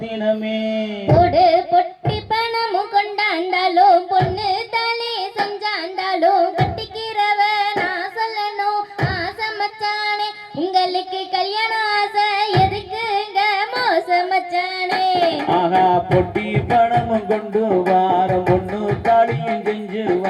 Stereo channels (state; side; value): identical; both; correlation 1.00